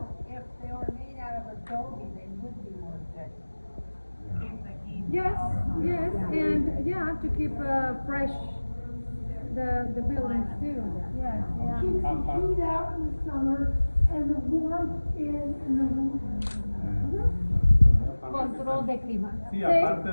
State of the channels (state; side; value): inverted; both; correlation -1.00